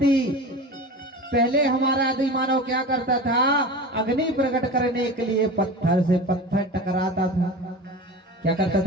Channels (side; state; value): both; normal; correlation 0.32